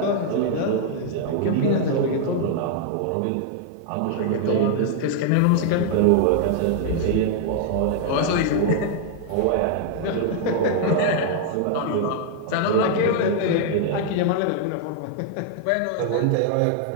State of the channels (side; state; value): both; different; correlation 0.00